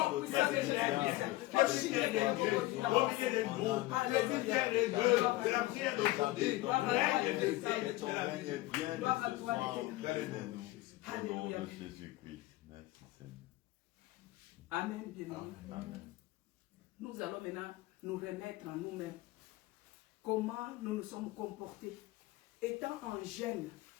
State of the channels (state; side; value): quieter; right; 18.3 dB